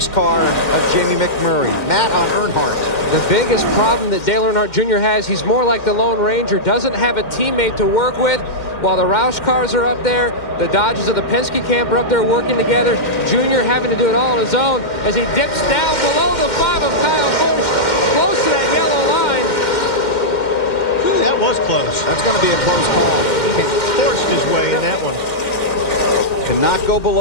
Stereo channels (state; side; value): late; right; 2.1 ms